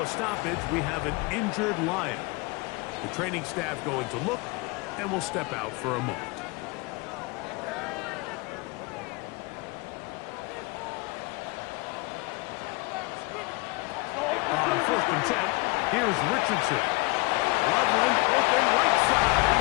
stoppage, we have an injured Lion. The training staff going to look, and will step out for a moment. On first and 10, here's Richardson. Loveland open right side.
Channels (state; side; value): quieter; right; 25.6 dB